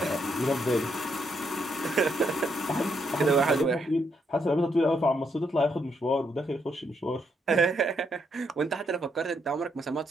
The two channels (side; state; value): both; normal; correlation 0.76